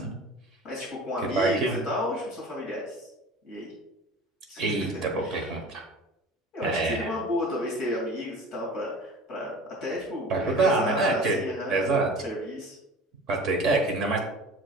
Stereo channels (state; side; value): normal; both; correlation 0.40